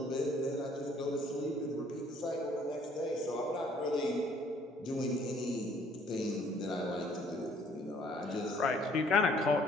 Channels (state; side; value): normal; both; correlation 0.61